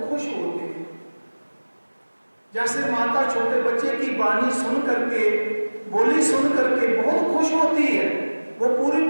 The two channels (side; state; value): both; inverted; correlation -1.00